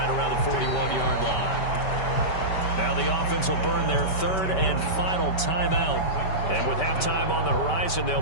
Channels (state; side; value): late; right; 5.2 ms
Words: around the 41-yard line. Now the offense will burn their 3rd and final timeout. And with halftime on the horizon, they'll